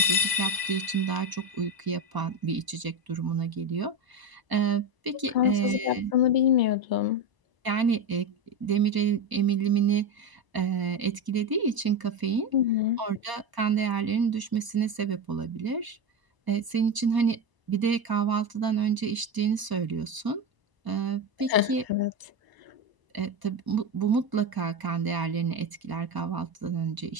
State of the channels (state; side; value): late; left; 1.0 ms